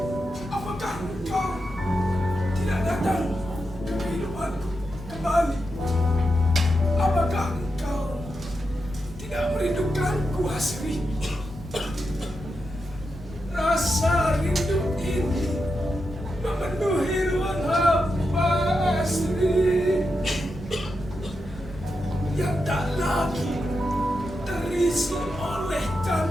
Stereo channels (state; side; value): normal; both; correlation 0.87